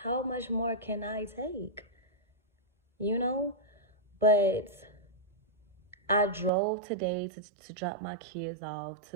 how much more can I take? But I drove today to drop my kids off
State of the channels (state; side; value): drops out; left; at 6.5 s